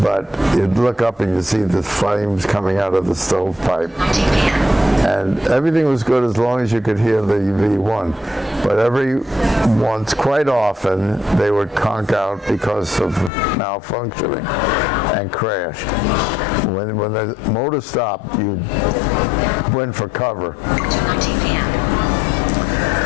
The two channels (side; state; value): right; drops out; at 13.3 s